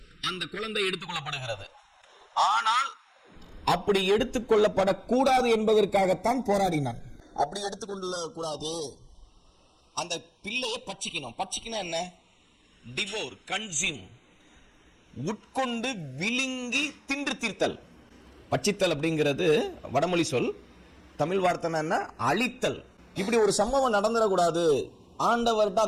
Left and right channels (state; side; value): identical; both; correlation 1.00